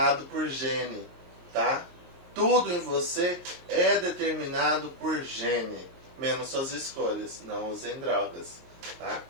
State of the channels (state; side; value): late; left; 23 ms